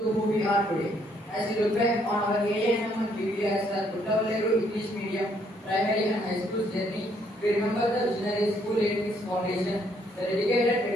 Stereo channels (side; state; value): both; normal; correlation 0.69